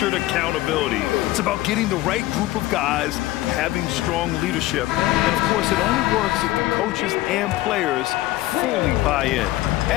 accountability. It's about getting the right group of guys, having strong leadership. And of course, it only works if the coaches and players fully buy in.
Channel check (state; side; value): quieter; right; 16.9 dB